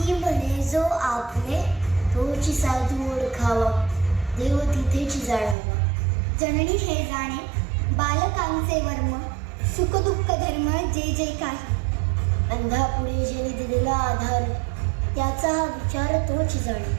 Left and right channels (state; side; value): drops out; left; at 5.6 s